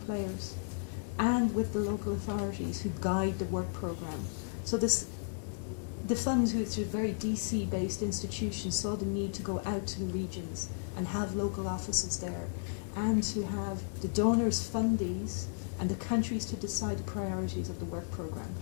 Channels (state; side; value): silent; right; digital silence